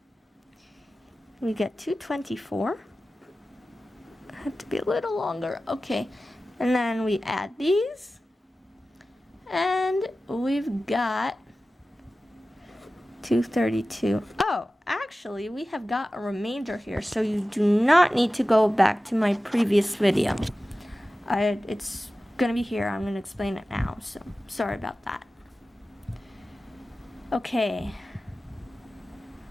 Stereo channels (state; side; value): normal; both; correlation 0.95